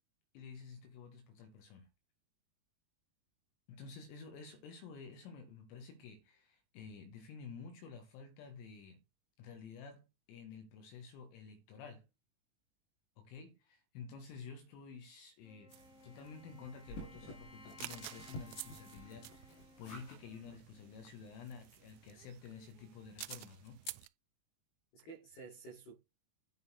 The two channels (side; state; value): right; late; 19 ms